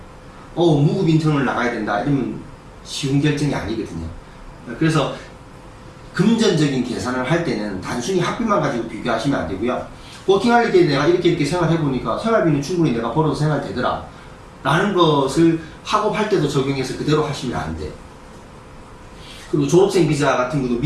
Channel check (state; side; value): identical; both; correlation 1.00